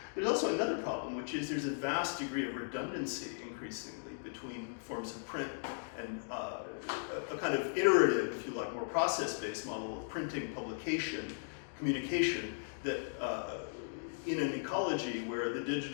There's also another problem, which is there's a vast degree of redundancy increasingly between forms of print and a kind of iterative, if you like, more process-based model of printing, publication, communication that in an ecology where the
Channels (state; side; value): silent; right; digital silence